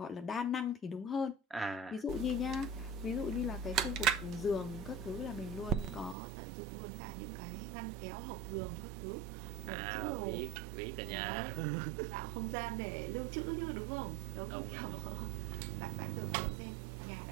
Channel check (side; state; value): left; drops out; at 6.2 s